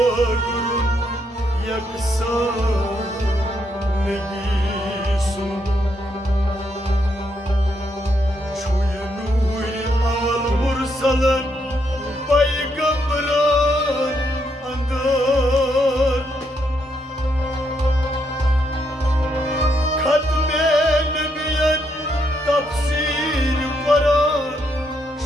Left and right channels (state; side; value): normal; both; correlation 0.77